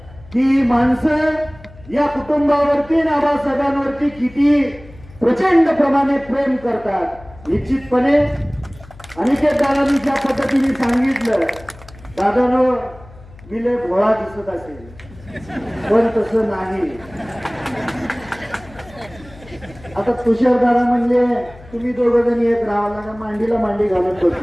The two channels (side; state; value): left; noise; hum, 21 dB below the sound